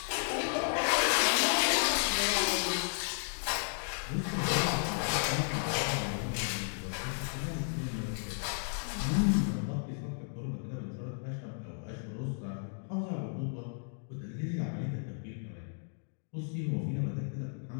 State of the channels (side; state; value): right; silent; digital silence